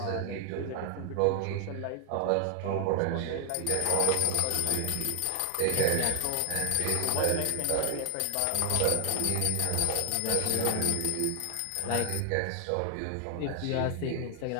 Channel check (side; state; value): both; different; correlation 0.00